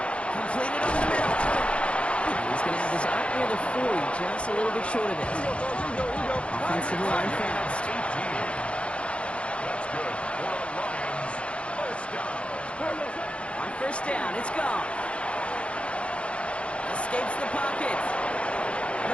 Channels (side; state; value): right; late; 0.060 ms